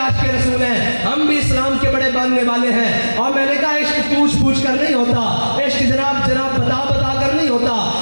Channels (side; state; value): both; inverted; correlation -1.00